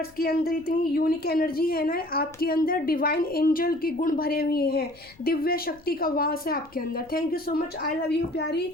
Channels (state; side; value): noise; left; rumble, 27 dB below the sound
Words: के अंदर इतनी यूनिक एनर्जी है ना, आपके अंदर डिवाइन एंजल के गुण भरे हुए हैं, दिव्य शक्ति का वास है आपके अंदर। Thank you so much, I love you प्यारी